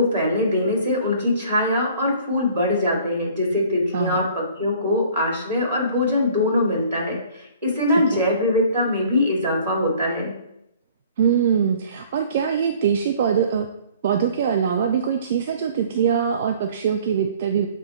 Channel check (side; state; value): both; inverted; correlation -0.53